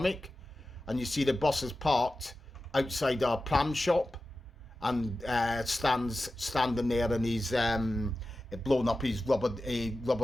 and you see the bus is parked outside our pram shop, and standing there in his blown up his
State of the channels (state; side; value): normal; both; correlation 0.94